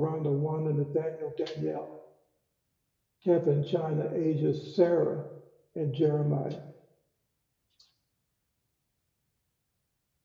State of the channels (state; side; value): identical; both; correlation 1.00